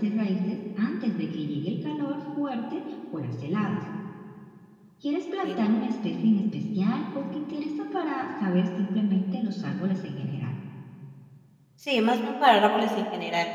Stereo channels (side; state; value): both; identical; correlation 1.00